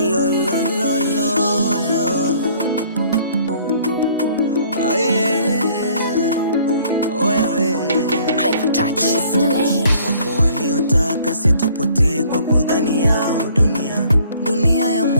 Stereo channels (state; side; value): inverted; both; correlation -0.58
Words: lo lo lo lo. Oh yeah. Oh yeah. Wapo waliotaka situpotee kwa kudhani yao dunia ya